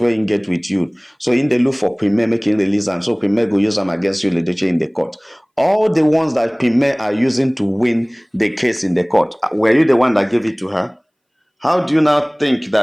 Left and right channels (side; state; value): both; identical; correlation 1.00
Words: you can get with you. So in the look for Pime making release them, so Pime go use them against you the Doche in the court. All the ones that Pime are using to win the case in the court, were you the one that gave it to her? How do you now think